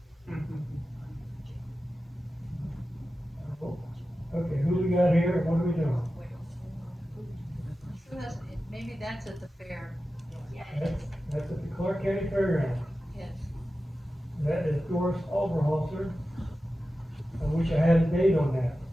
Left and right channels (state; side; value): normal; both; correlation 0.93